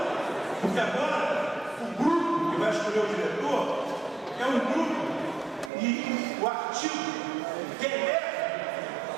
porque agora o grupo que vai escolher o diretor é um grupo e o artigo que eleva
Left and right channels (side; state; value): left; drops out; at 5.7 s